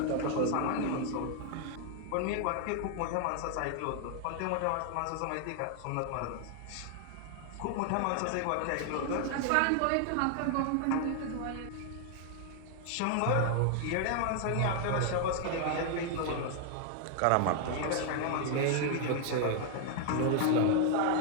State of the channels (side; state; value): both; different; correlation 0.00